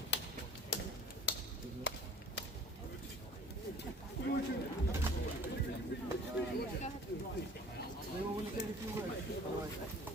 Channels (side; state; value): both; normal; correlation 0.47